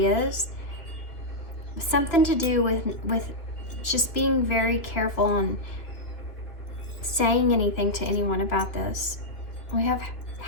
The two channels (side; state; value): right; late; 2.9 ms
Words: Something to do with just being very careful on saying anything to anyone about this. We have